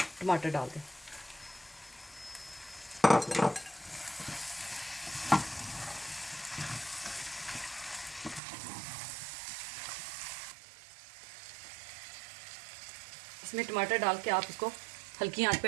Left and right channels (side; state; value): left; drops out; at 8.4 s